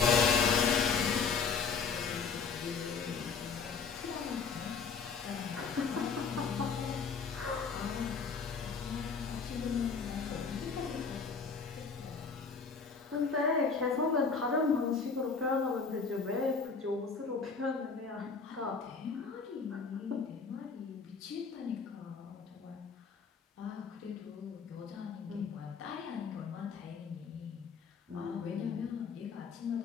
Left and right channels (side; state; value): right; quieter; 5.3 dB